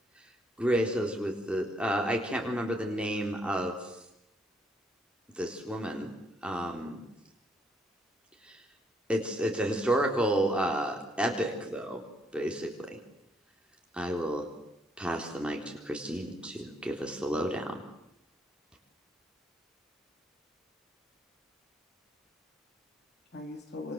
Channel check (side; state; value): both; normal; correlation 0.70